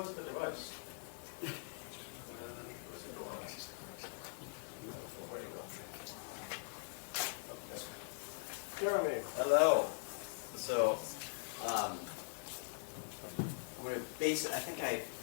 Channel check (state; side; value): silent; right; digital silence